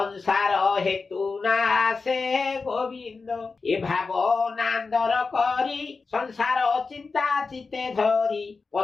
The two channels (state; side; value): quieter; right; 4.3 dB